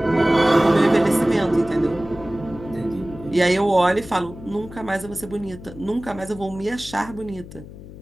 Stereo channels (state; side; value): noise; left; hum, 16 dB below the sound